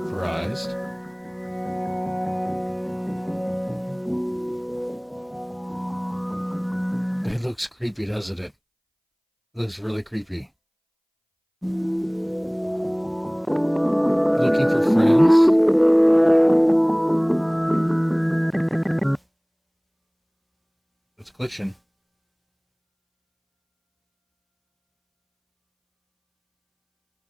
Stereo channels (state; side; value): identical; both; correlation 1.00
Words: Surprised. It looks creepy, doesn't it? It looks really creepy. Looking for friends? It's glitching.